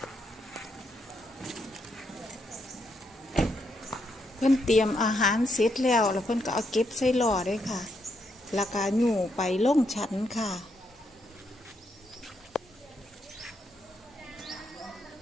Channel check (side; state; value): both; normal; correlation 0.78